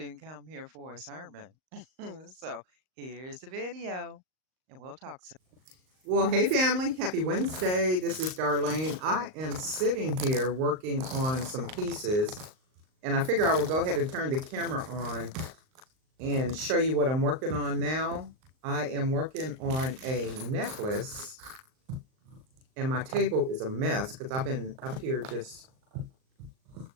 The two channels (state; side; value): late; left; 38 ms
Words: come here for a sermon. So here's the video, and we'll talk soon. Well, hey family, happy Wednesday. This is Darlene. I am sitting here working on some pieces, and I figure I will go ahead and turn the camera on and show you what I'm working on now. I am working on a necklace, and my table is a mess because I've been up here just